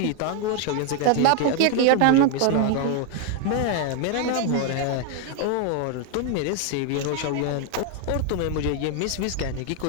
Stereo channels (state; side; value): different; both; correlation 0.01